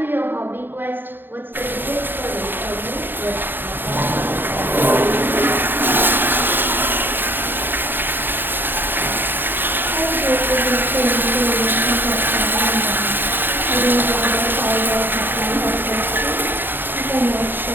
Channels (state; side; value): late; left; 0.094 ms